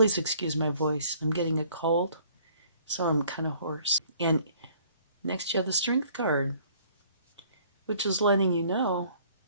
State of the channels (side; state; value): both; inverted; correlation -0.58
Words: excuse my voice. I'm getting a cold, so I'm kind of hoarse. And next, you have the Strength card, which is letting you know